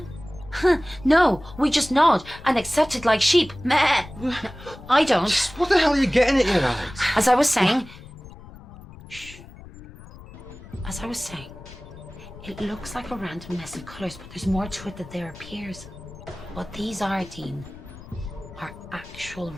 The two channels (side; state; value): left; noise; rumble, 18 dB below the sound